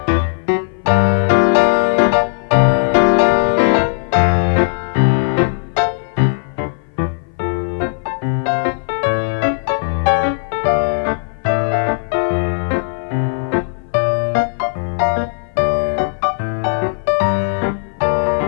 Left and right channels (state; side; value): silent; right; 57 dB below the other